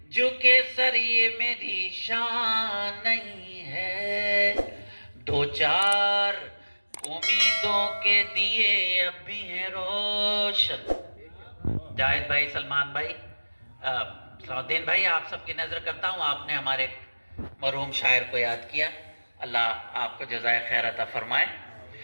جھکے سر یہ میری شان نہیں ہے، دو چار امیدوں کے دیے اب بھی ہیں روشن۔ جاہد بھائی، سلمان بھائی، سعودین بھائی، آپ سب کی نظر کرتا ہوں، آپ نے ہمارے مرحوم شاعر کو یاد کیا، اللہ آپ کو جزائے خیر عطا فرمائے۔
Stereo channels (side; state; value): both; inverted; correlation -1.00